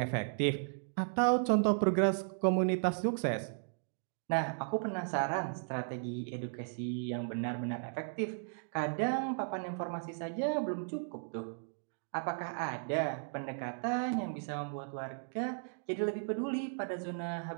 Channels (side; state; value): left; silent; digital silence